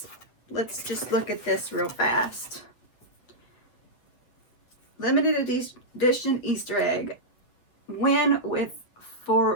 Let's just look at this real fast. Limited edition Easter egg. Win with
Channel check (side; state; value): right; late; 8.0 ms